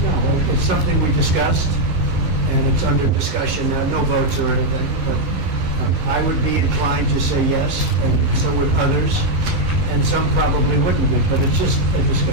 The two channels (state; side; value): late; left; 11 ms